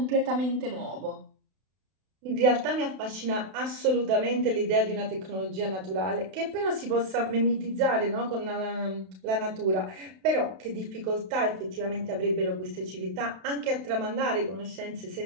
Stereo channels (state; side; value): late; left; 32 ms